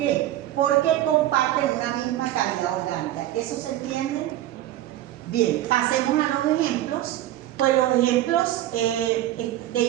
Porque comparten una misma cavidad orgánica. ¿Eso se entiende? Bien, pasemos a los ejemplos. Pues los ejemplos de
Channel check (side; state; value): left; quieter; 13.9 dB